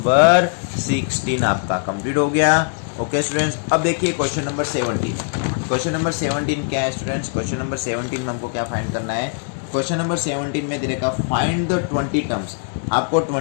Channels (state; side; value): silent; right; 60 dB below the other